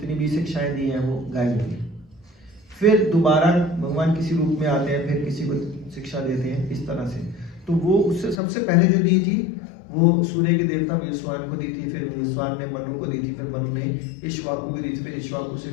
भी शिक्षाएं दी हैं वो गायब होती है, फिर दोबारा भगवान किसी रूप में आते हैं, फिर किसी को शिक्षा देते हैं, इस तरह से। तो वो उससे सबसे पहले जो दी थी वो सूर्य के देवता विवस्वान को दी थी, फिर विवस्वान ने मनु को दी थी, फिर मनु ने इक्ष्वाकु को दी थी, फिर इक्ष्वाकु से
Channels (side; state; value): right; drops out; at 8.3 s